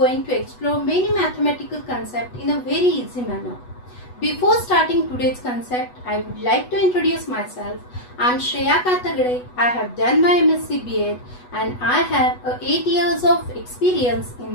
to explore many mathematical concepts in a very easy manner. Before starting today's concept, I would like to introduce myself. I am Shreya Katagade. I have done my MSc B.Ed and I have 8 years of experience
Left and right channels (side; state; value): right; late; 8.1 ms